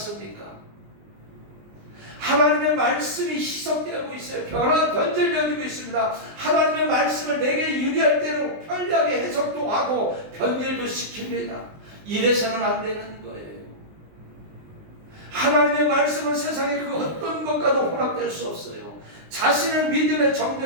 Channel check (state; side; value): late; left; 19 ms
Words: 하나님의 말씀이 희석되고 있어요. 변질되어지고 있습니다. 하나님의 말씀을 내게 유리할 대로 편리하게 해석도 하고 변질도 시킵니다. 이래서는 안 되는 거예요. 하나님의 말씀은 세상의 그 어떤 것과도 혼합될 수 없어요. 자신의 믿음의